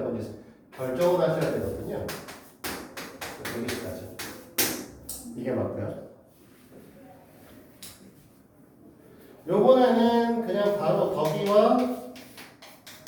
건지 결정을 하셔야 되거든요. 여기까지. 이게 맞고요. 요번에는 그냥 바로 덕이와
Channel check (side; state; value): both; identical; correlation 1.00